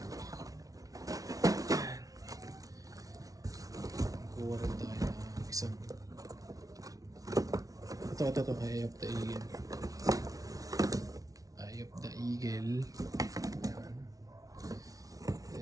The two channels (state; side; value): late; left; 0.18 ms